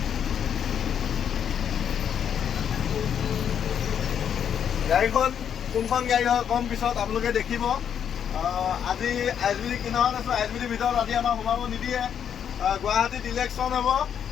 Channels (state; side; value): quieter; right; 8.4 dB